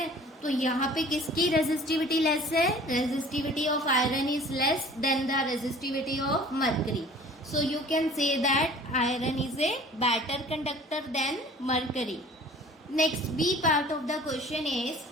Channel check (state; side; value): normal; both; correlation 0.48